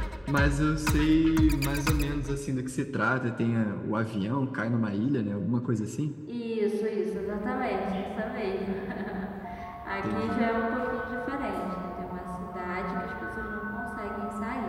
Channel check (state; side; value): identical; both; correlation 1.00